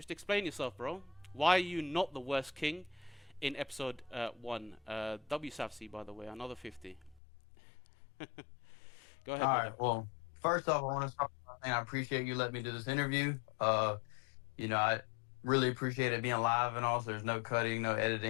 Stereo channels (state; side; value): drops out; right; at 7.2 s